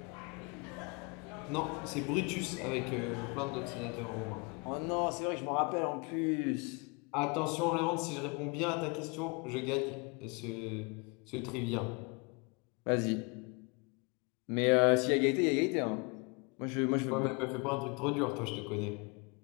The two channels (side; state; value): right; quieter; 31.2 dB